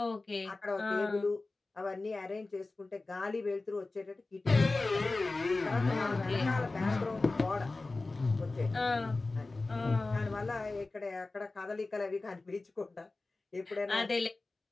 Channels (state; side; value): quieter; right; 3.3 dB